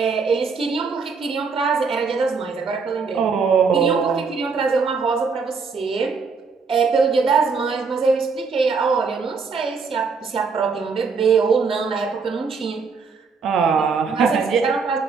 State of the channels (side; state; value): left; quieter; 5.0 dB